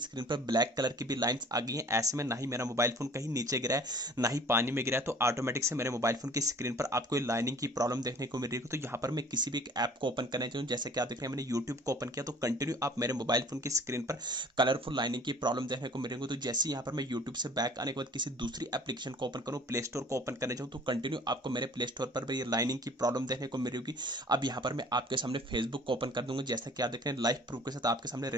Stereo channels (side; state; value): both; normal; correlation 0.50